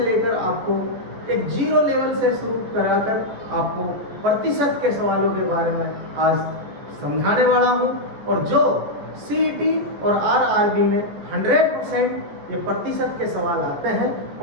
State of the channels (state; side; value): late; left; 14 ms